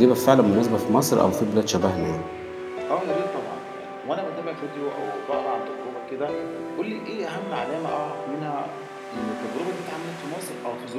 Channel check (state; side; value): identical; both; correlation 1.00